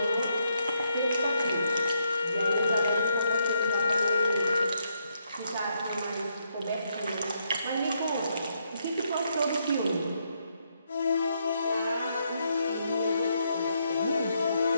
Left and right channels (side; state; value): both; inverted; correlation -0.77